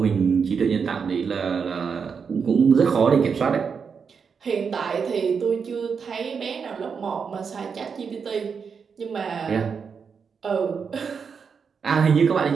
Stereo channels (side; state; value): left; quieter; 6.1 dB